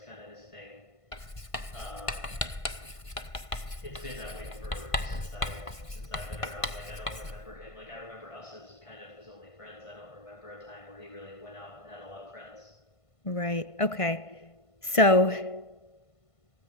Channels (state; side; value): late; right; 1.5 ms